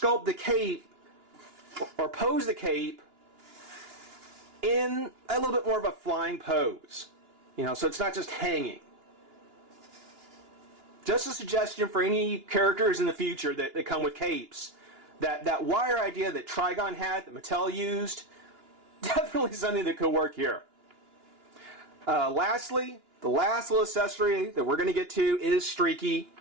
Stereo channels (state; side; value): late; left; 2.9 ms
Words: the cape or pose the cape in a little bit more of a flying pose. You know, so it's not just hanging. Just a suggestion for any characters in the future that come with capes. That wire idea that Trigon had, that Mattel used, definitely something that could work here. Lastly, the last little accessory that we're going to get to is Streaky.